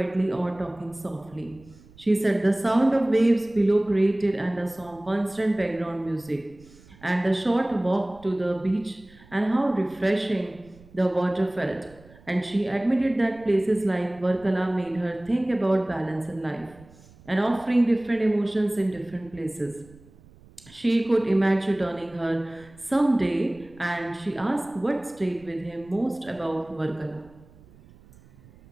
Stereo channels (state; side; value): noise; right; rumble, 25 dB below the sound